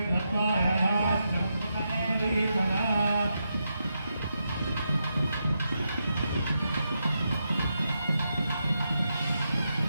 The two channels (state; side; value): inverted; both; correlation -0.84